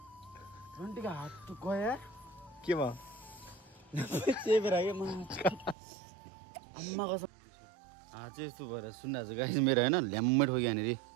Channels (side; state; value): left; drops out; at 5.8 s